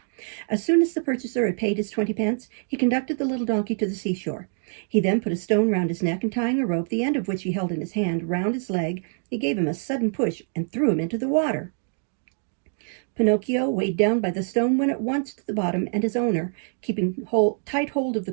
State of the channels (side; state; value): left; silent; 62 dB below the other